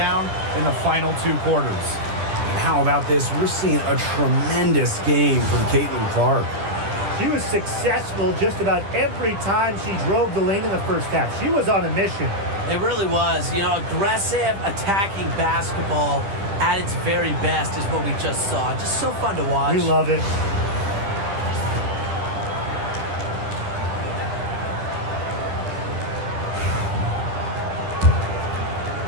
in the final 2 quarters. And how about this? We're seeing a tremendous game from Caitlin Clark. She was successful just about every time she drove the lane in the first half. She was on a mission. It really was. You know, aggressive, attacking basketball at its very best is what we just saw. Just so fun to watch. We love it.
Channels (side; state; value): left; late; 10 ms